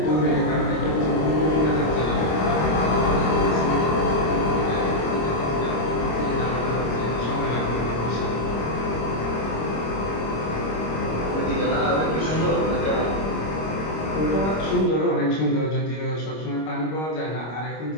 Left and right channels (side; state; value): right; late; 26 ms